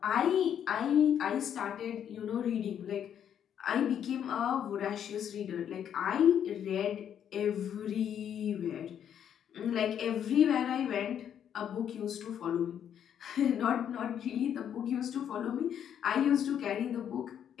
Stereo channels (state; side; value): quieter; right; 9.1 dB